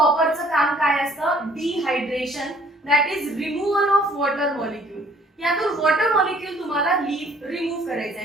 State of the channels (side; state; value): both; normal; correlation 0.58